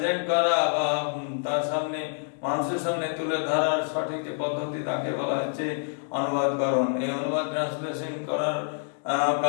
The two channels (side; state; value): right; silent; digital silence